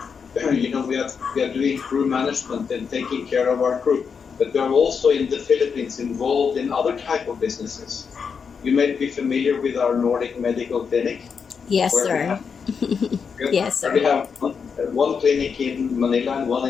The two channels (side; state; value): right; quieter; 6.1 dB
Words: you know, we are doing crew management and taking care of our crew, but we are also in the Philippines involved in other type of businesses. You may be familiar with our Nordic medical clinic. Yes, sir. Yes, sir. We have one clinic in Manila and one